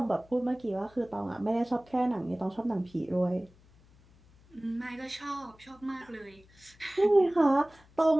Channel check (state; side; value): noise; left; hum, 28 dB below the sound